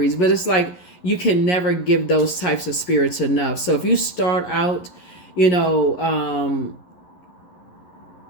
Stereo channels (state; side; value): late; right; 11 ms